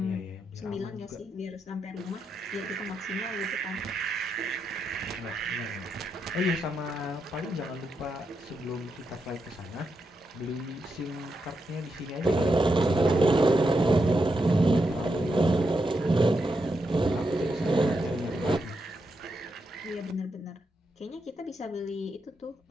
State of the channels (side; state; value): both; normal; correlation 0.84